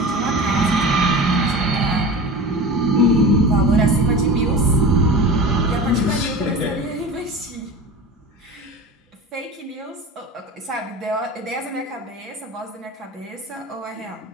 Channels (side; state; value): both; normal; correlation 0.33